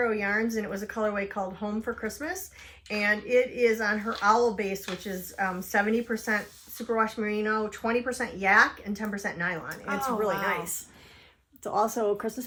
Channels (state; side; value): identical; both; correlation 1.00